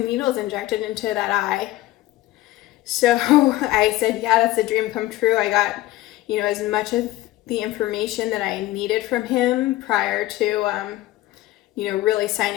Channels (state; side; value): quieter; right; 16.2 dB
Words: needles injected into that eye? So I said, yeah, that's a dream come true. I got, as much of the information that I needed from him prior to, really